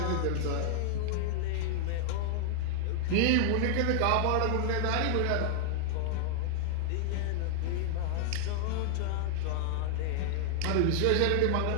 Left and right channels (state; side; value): different; both; correlation 0.00